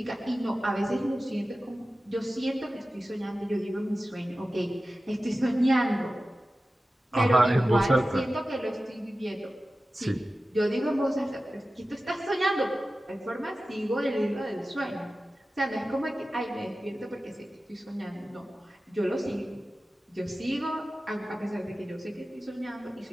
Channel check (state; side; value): normal; both; correlation 0.95